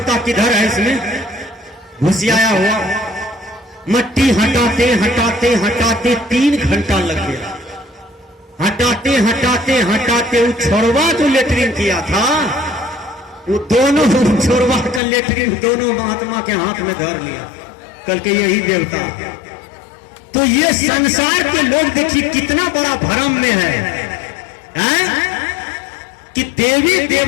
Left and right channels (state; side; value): drops out; right; at 15.0 s